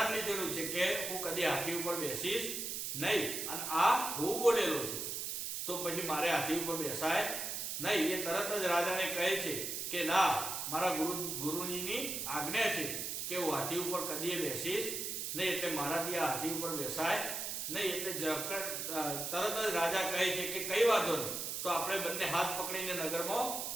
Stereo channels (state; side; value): noise; right; hiss, 3 dB below the sound